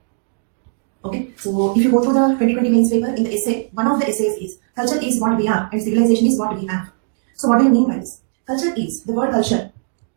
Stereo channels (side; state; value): left; silent; 67 dB below the other